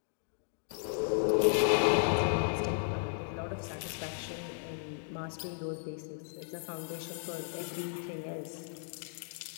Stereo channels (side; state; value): right; silent; digital silence